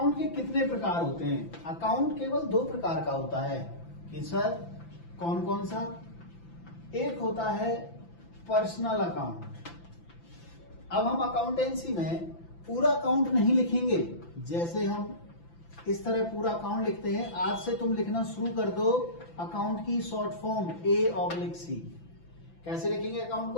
के कितने प्रकार होते हैं, अकाउंट केवल 2 प्रकार का होता है कि सर कौन कौन सा। एक होता है पर्सनल अकाउंट। अब हम अकाउंटेंसी में पूरा अकाउंट नहीं लिखेंगे, जैसे हम इस तरह पूरा अकाउंट लिखते हैं। आज से तुम लिखना शुरू कर दो अकाउंट की शॉर्ट फॉर्म A/C। कैसे लिखेंगे अकाउंट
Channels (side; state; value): right; late; 5.9 ms